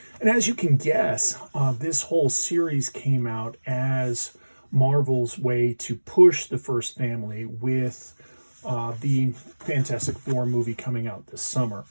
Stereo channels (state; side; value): inverted; both; correlation -1.00